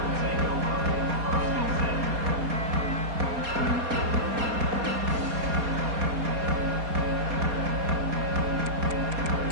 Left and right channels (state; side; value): late; left; 4.2 ms